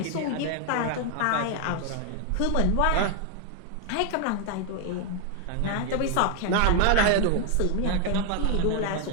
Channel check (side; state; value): both; different; correlation 0.01